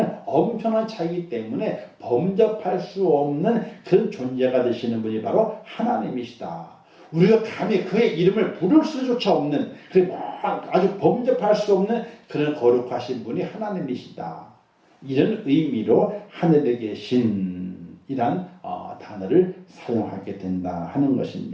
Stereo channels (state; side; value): identical; both; correlation 1.00